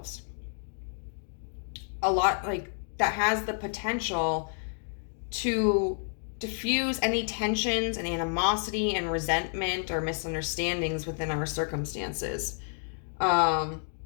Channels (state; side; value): silent; right; digital silence